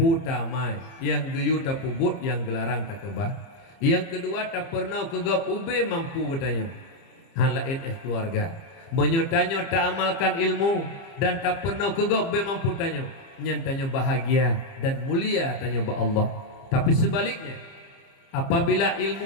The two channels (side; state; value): right; late; 30 ms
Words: tamai yang geyu tak pubut yang gelarang tak kebah. Yang kedua tak pernah kegap ube mampu bertanya halain keluarga menyotanya tak amalkan ilmu dan tak pernah kegap ube mampu tanya nyantanya bahagia dan mulia tanya ba Allah. Tapi sebaliknya apabila